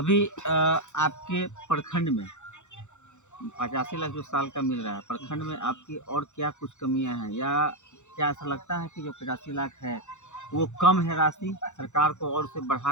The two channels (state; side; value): late; right; 0.84 ms